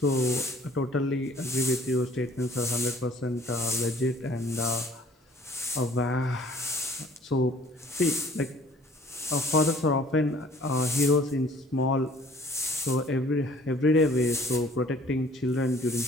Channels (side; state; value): both; normal; correlation 0.54